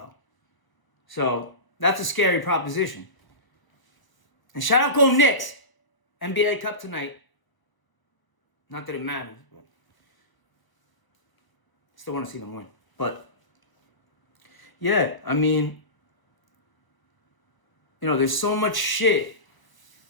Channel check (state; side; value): late; right; 1.0 ms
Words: So that's a scary proposition. And shout out Go Knicks. NBA Cup tonight. Not that it matters, but still want to see them win. But yeah, I mean, there's so much shit